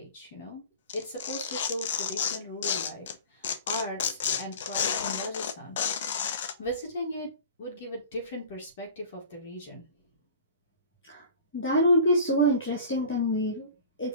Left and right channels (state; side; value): inverted; both; correlation -0.40